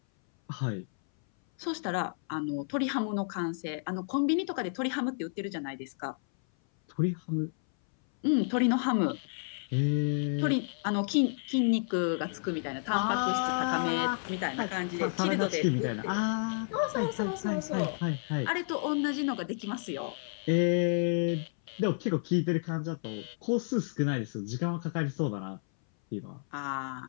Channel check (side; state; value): right; silent; 57 dB below the other